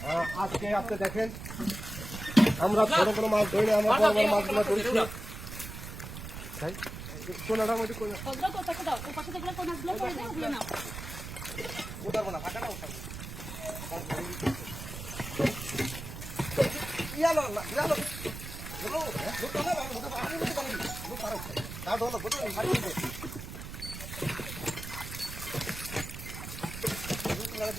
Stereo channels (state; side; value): noise; right; rumble, 9 dB below the sound